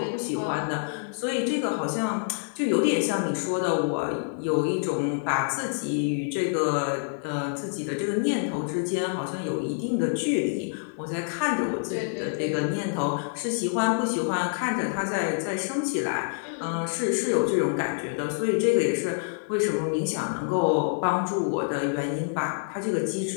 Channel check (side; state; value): right; silent; 60 dB below the other